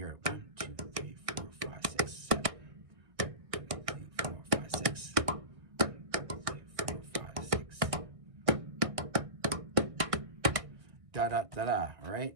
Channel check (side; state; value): left; late; 1.6 ms